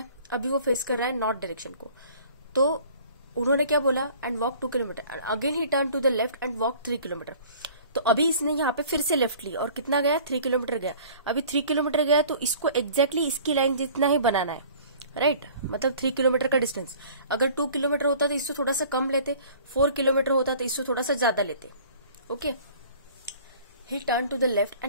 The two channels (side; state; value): both; inverted; correlation -0.49